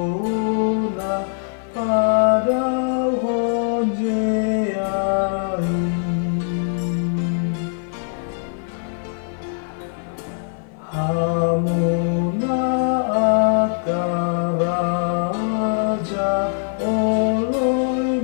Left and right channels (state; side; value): silent; right; 57 dB below the other